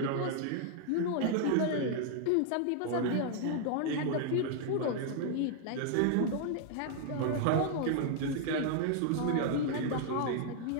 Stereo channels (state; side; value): different; both; correlation -0.01